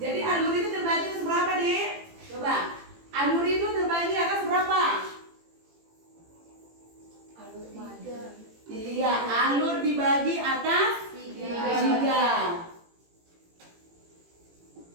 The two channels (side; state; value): left; late; 18 ms